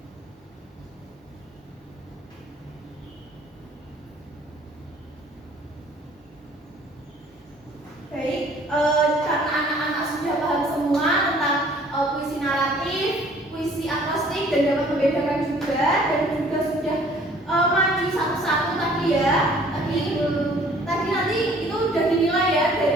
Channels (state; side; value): normal; both; correlation 0.55